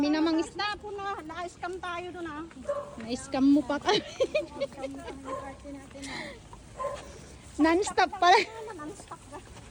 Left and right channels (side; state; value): both; identical; correlation 1.00